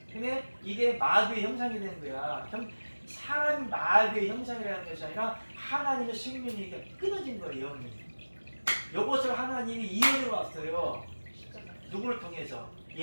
근데 이게 마귀의 형상이 되는 거야. 사람 마귀의 형상이라는 것이 아니라 하나님의 생명이 이렇게 끊어진 거예요. 영이. 이것을 하나님이 이어져 왔어요. 누구를 통해서?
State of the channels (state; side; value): inverted; both; correlation -1.00